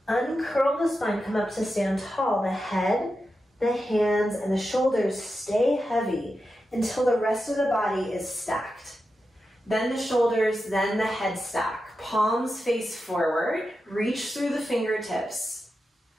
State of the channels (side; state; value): both; normal; correlation 0.90